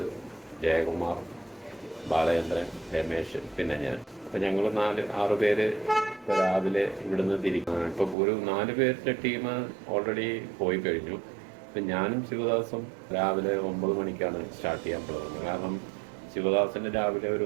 ജയകുമാർ, ബാലചന്ദ്രൻ, രമേശ്, പിന്നെ ഞാൻ. അപ്പം ഞങ്ങൾ 6 പേര് ഇപ്പോൾ രാവിലെ ഇവിടുന്ന് തിരിക്കും. ഇപ്പോൾ ഒരു 4 പേരുടെ ടീം ഓൾറെഡി പോയി കഴിഞ്ഞു. ഇപ്പം ഞാനും ശിവദാസും രാവിലെ 9 മണിക്കാണ് സ്റ്റാർട്ട് ചെയ്യാൻ പോകുന്നത്. കാരണം ശിവദാസിന് രാവിലെ ഒരു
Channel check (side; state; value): left; drops out; at 8.2 s